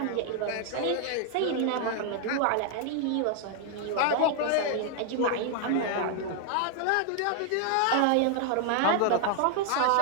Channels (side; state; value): both; different; correlation 0.00